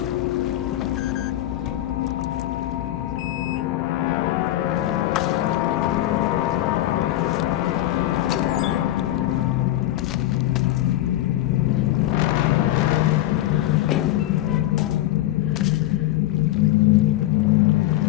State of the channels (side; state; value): right; quieter; 14.8 dB